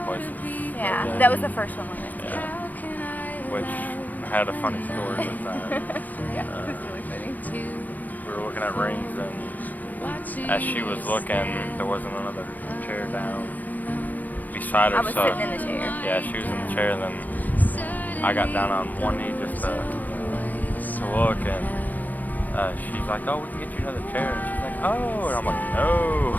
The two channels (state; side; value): late; right; 0.082 ms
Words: places. Yeah, that was the first one we went to. Yeah. Which had a funny story with that. Yeah, it was really funny. We were looking at rings, and as she was looking, there wasn't another chair down beside her. I was sitting in the chair. Yeah, she was in the chair, and then I got down on one knee just to look, and she's like, "Oh, we can get you another chair." And she's like, "Oh," and I'm like, "No,"